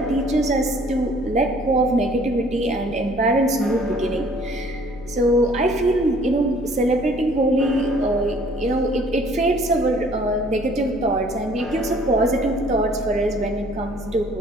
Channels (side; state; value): left; noise; hum, 16 dB below the sound